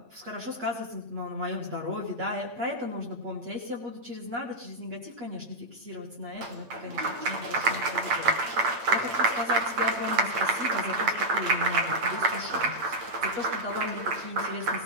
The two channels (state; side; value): late; left; 8.7 ms